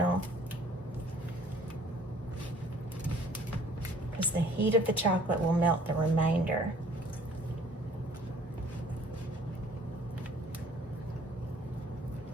Because the heat of the chocolate will melt the remainder.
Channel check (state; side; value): normal; both; correlation 0.55